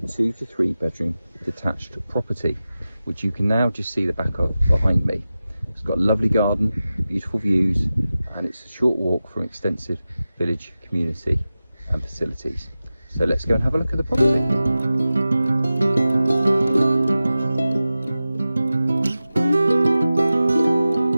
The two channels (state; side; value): inverted; both; correlation -0.94